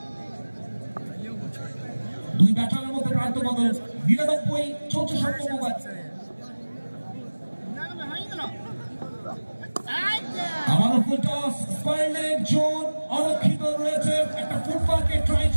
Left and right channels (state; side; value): inverted; both; correlation -1.00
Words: দুই ব্যাটারের মধ্যে প্রান্ত বদল, 99 চলছে 7ম ওভার। আবারও full toss, square leg zone অরক্ষিত রয়েছে, একটা ফুটবলকে ট্রাই